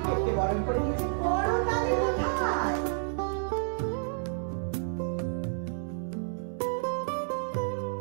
বরণ করে নিয়েছেন বড় তাদের কোথায়।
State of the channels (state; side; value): silent; left; 57 dB below the other